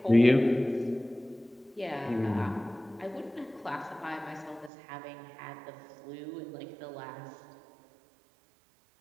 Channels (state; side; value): drops out; left; at 4.7 s